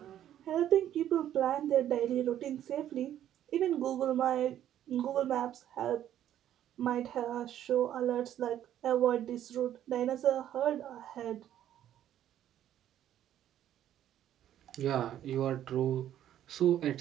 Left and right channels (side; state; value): left; quieter; 11.4 dB